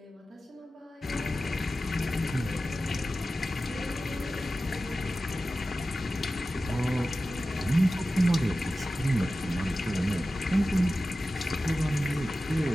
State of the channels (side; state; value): both; normal; correlation 0.94